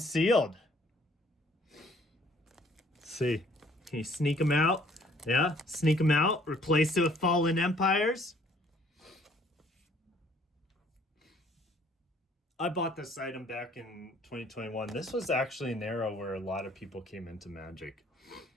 see. Can you sneak them out? Yeah, sneak them out. Replace it with Fallen Empires. I bought this item back in 2021. This was actually an era where a lot of people came into Magic.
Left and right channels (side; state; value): both; normal; correlation 0.60